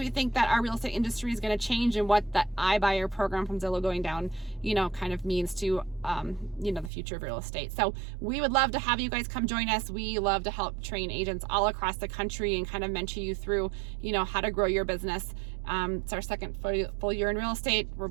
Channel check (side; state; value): left; drops out; at 6.9 s